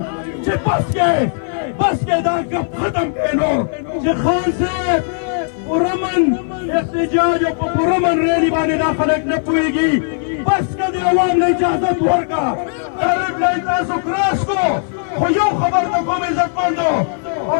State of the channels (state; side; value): silent; right; 56 dB below the other